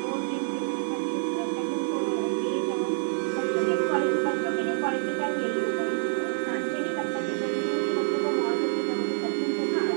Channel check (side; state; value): left; silent; 55 dB below the other